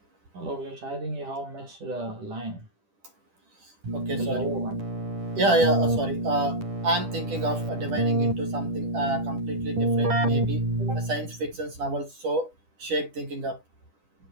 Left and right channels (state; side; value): late; left; 10 ms